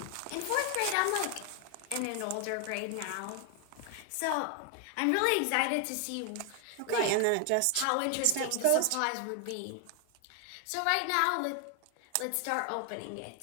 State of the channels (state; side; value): different; both; correlation 0.00